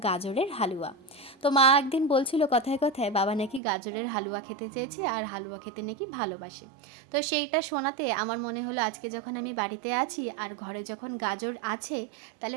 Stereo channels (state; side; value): drops out; left; at 3.6 s